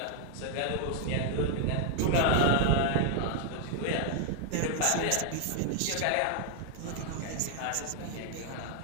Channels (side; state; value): both; different; correlation 0.00